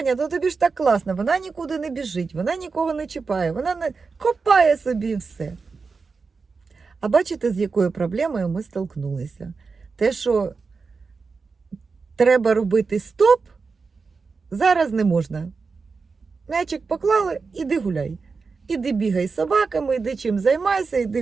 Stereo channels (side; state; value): left; quieter; 4.7 dB